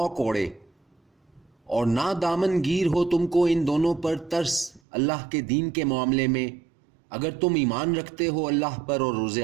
کوڑے، اور نہ دامن گیر ہو تم کو ان دونوں پر ترس اللہ کے دین کے معاملے میں، اگر تم ایمان رکھتے ہو اللہ پر اور روز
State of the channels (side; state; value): left; drops out; at 4.8 s